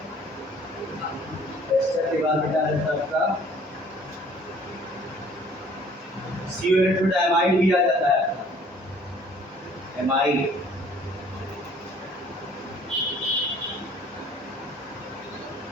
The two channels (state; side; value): normal; both; correlation 0.55